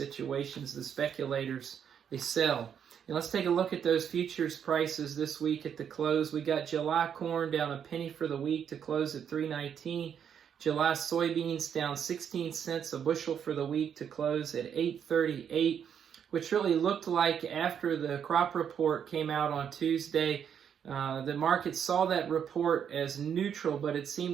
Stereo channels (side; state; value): left; quieter; 8.2 dB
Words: The speculators, they sell. And let's take a look at those futures prices this week at the close. We got July corn down a penny for the week to close at $3.19. July soybeans down 16 cents a bushel for the week to close at $8.38, which really looked like after the crop report came out on Tuesday, the market saw that report as neutral, but it